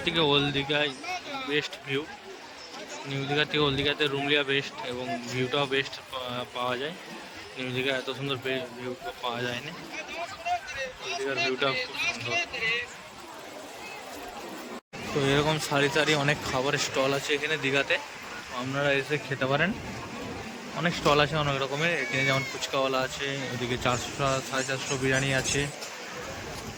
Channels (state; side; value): identical; both; correlation 1.00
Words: থেকে ওল্ড দীঘায় বেস্ট ভিউ। নিউ দীঘার থেকে ওল্ড দীঘাতে রুম লিয়া বেস্ট এবং ভিউটাও বেস্ট পাওয়া যায়। নিউ দীঘা এত সুন্দর ভিউ পাওয়া যায় না। ওল্ড দীঘার ভিউটা খুব সুন্দর। তো এরকম সারি সারি অনেক খাবারের স্টল আছে এখানে দীঘাতে, আপনারা এসে খেতে পারেন। অনেক স্টল আছে অনেক রকমের এখানে, যেমন ফুচকাওয়ালা আছে, ওদিকে 400 450 বিরিয়ানি আছে।